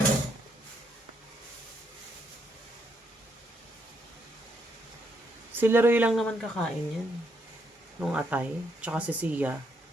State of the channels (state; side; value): normal; both; correlation 0.76